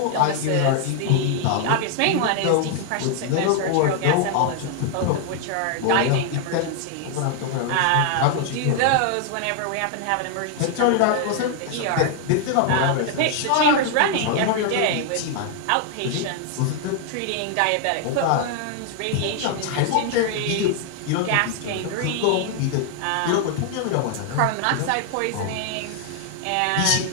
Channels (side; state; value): both; different; correlation 0.00